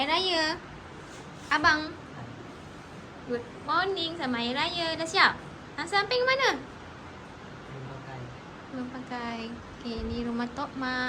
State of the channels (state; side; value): identical; both; correlation 1.00